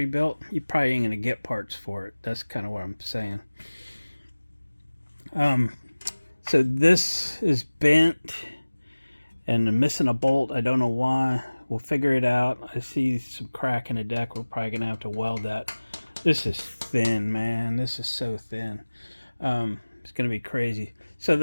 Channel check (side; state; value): both; inverted; correlation -1.00